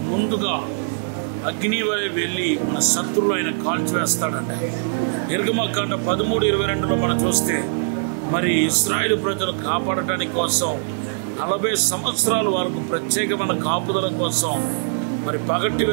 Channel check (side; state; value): left; silent; digital silence